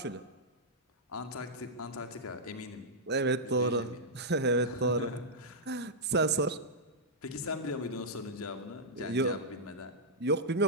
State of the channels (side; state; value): both; normal; correlation -0.08